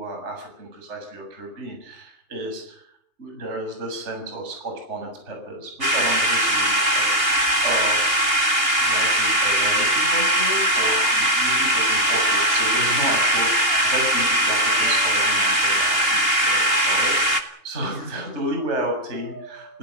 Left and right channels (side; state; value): left; late; 2.8 ms